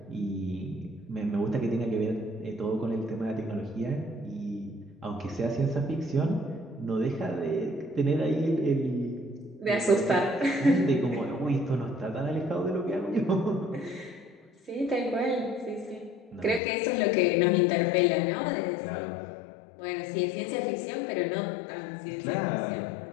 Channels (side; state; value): right; drops out; at 16.6 s